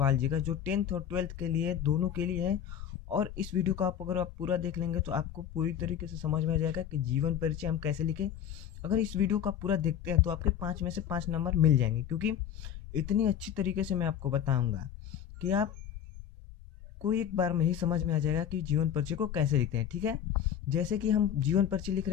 जी का, जो 10th और 12th के लिए दोनों के लिए है। और इस वीडियो को अगर आप पूरा देख लेंगे तो आपको पूरी तरीके से समझ में आ जाएगा कि जीवन परिचय हम कैसे लिखें। अगर इस वीडियो को आप पूरा देखते हैं तो आपके 5 में से 5 नंबर मिल जाएंगे, क्योंकि इतनी अच्छी तरीके से मैं आपको बताऊँगा कि आप को एक बार में ही समझ में आ जाएगा कि जीवन परिचय को कैसे लिखते हैं। ठीक है, जैसे कि हम जीवन परिचय लिख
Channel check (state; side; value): quieter; right; 9.4 dB